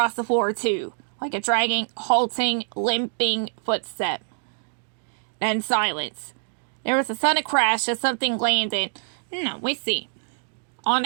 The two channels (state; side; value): silent; left; digital silence